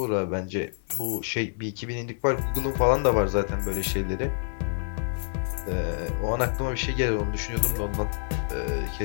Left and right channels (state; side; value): silent; right; digital silence